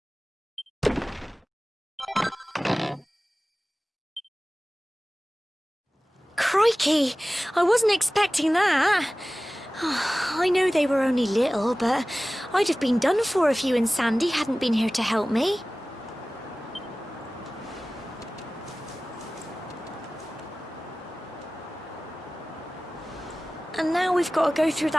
Crikey! I wasn't expecting that. I know they were only little, but I'd have been done for if you and Sandy hadn't been here to help me. And now we've got to go through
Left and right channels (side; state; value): both; normal; correlation 0.97